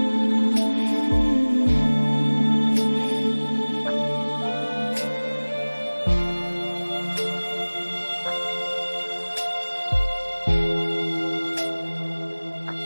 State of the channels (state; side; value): inverted; both; correlation -1.00